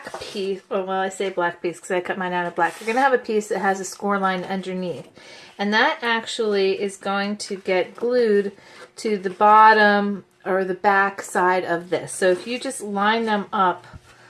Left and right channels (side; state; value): both; identical; correlation 1.00